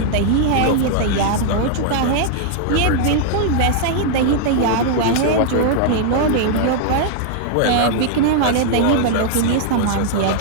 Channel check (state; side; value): different; both; correlation -0.01